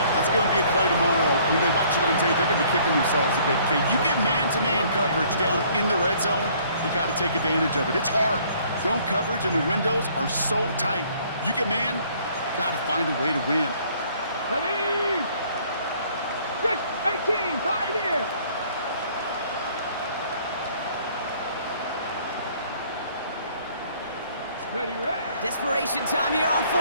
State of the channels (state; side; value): inverted; both; correlation -0.59